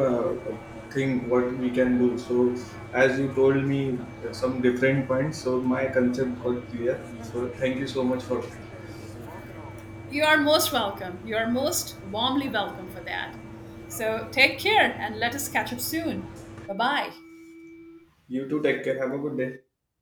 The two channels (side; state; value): both; identical; correlation 1.00